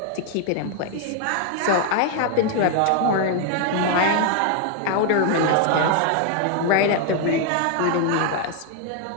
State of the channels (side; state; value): both; different; correlation 0.00